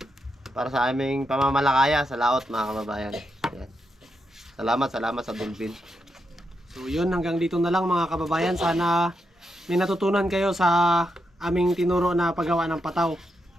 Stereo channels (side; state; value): both; normal; correlation 0.84